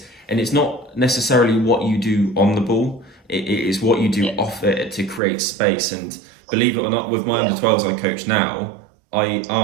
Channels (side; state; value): left; drops out; at 5.2 s